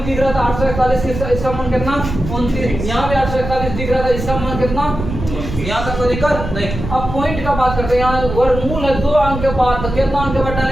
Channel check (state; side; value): noise; right; rumble, 7 dB below the sound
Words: दिख रहा था 841 इसका मान कितना? 29। यहाँ भी 841 दिख रहा था, इसका मान कितना? यहाँ तक कोई दिक्कत नहीं। अब पॉइंट का बात करते हैं। यहाँ वर्गमूल है 2 अंक के बाद, तो कितना अंक के बाद